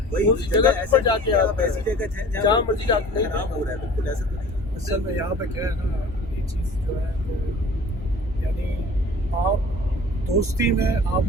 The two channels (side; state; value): both; normal; correlation 0.44